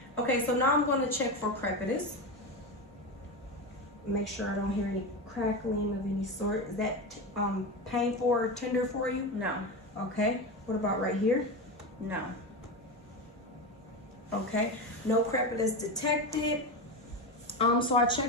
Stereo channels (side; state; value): both; normal; correlation 0.19